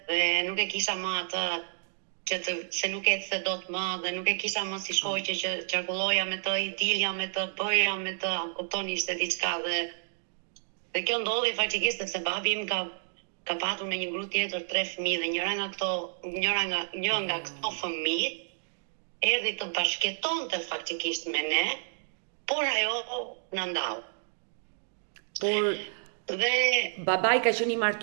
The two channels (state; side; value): silent; left; digital silence